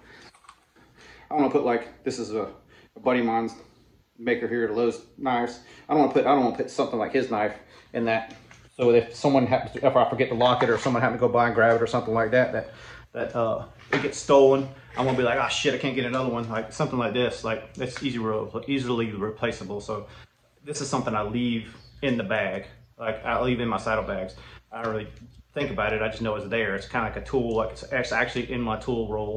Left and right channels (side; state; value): both; identical; correlation 1.00